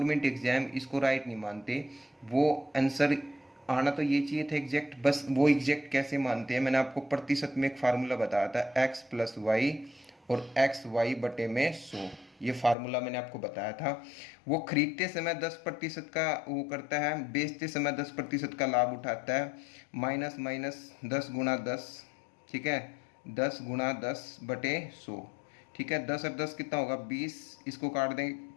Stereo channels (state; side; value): drops out; right; at 12.8 s